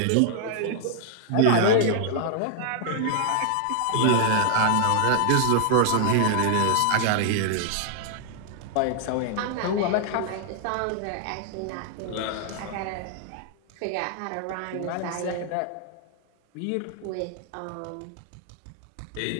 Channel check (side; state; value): both; different; correlation 0.00